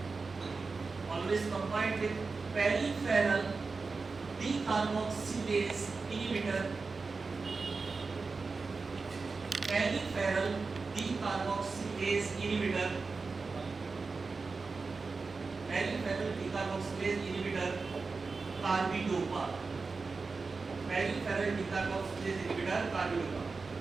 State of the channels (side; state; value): left; quieter; 4.3 dB